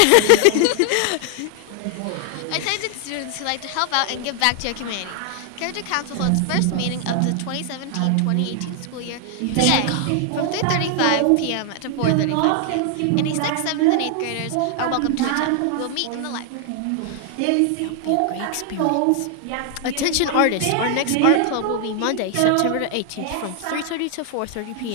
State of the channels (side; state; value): both; different; correlation 0.00